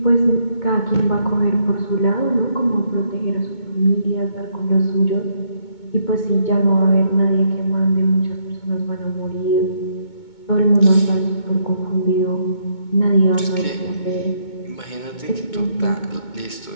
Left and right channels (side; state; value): right; late; 2.2 ms